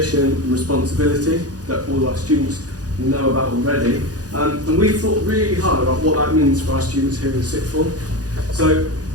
and responsibility that all our students know about already. And we've thought really hard about what that means for our students here in sixth form. So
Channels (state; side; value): late; left; 0.68 ms